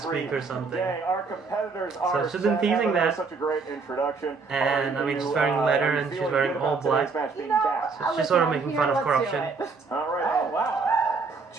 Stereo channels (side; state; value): left; quieter; 4.5 dB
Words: week or something. Dang, our competitors are she's been teasing Emma, that. Such a great introduction. And, I mean, she's wearing leather and she's wearing all black. So she's sort of making fun of corruption. All right. Oh, wow.